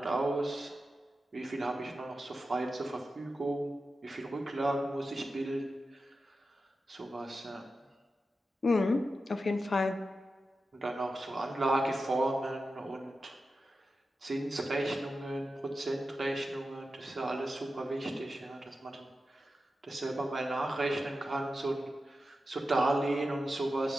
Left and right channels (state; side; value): normal; both; correlation 0.91